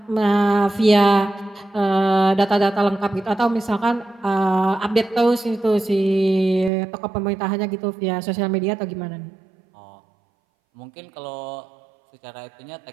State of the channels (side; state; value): left; drops out; at 6.7 s